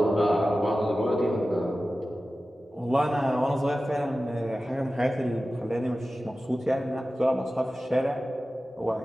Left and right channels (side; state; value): both; normal; correlation 0.95